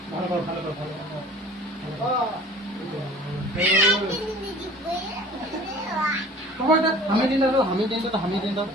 ভালো করো, ভালো করো, ভালো করো। হামি দিন দাও, হামি দিন দাও, হামি দিন দাও,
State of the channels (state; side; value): normal; both; correlation 0.46